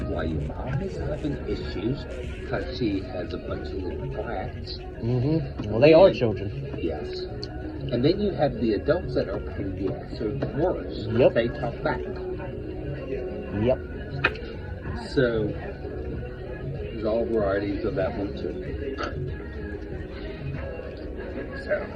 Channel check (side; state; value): both; identical; correlation 1.00